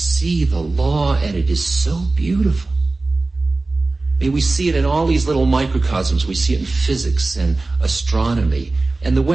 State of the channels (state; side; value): quieter; left; 3.3 dB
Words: the law, and it is so beautiful. I mean, we see it in all these little microcosms. We see it in physics and astronomy, and the